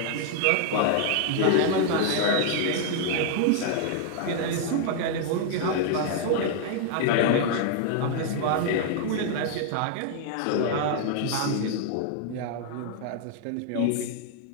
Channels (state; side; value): different; both; correlation 0.00